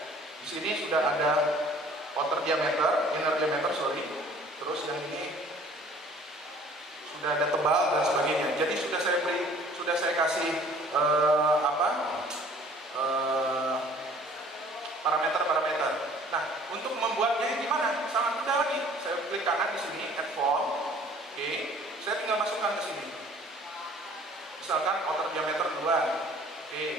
di sini sudah ada outer diameter, inner diameter, terus yang ini sudah ada tebal dan sebagainya. Jadi sudah saya kasih parameter. Nah, untuk membuatnya gimana? Sangat mudah lagi. Saya klik kanan di sini, add form. Oke, saya tinggal masukkan ke sini. Misalkan outer diameter 2.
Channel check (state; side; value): normal; both; correlation 0.53